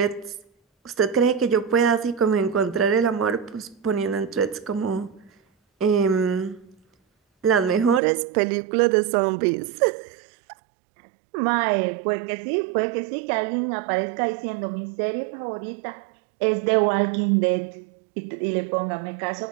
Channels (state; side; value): drops out; left; at 8.0 s